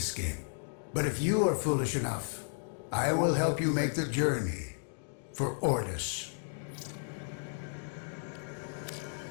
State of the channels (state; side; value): silent; right; digital silence